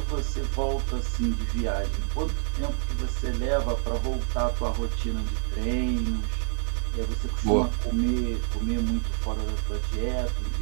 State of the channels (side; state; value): left; silent; 60 dB below the other